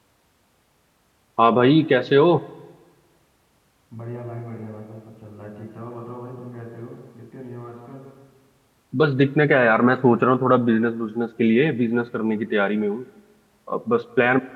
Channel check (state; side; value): identical; both; correlation 1.00